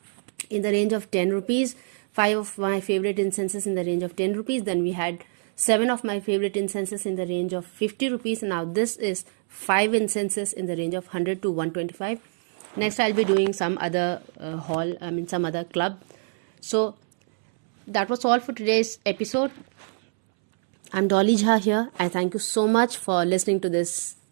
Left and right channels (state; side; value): silent; left; 62 dB below the other